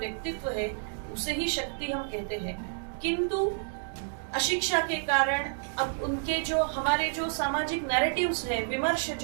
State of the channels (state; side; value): silent; left; digital silence